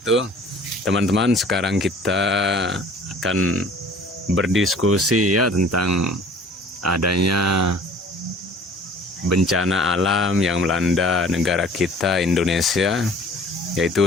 Teman-teman, sekarang kita akan berdiskusi ya tentang adanya bencana alam yang melanda negara kita Indonesia,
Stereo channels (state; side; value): normal; both; correlation 0.50